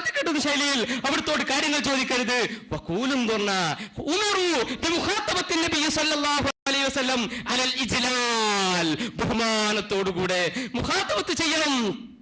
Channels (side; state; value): both; identical; correlation 1.00